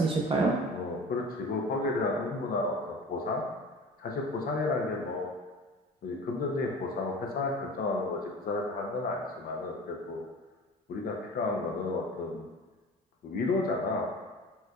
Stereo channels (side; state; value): both; normal; correlation 0.39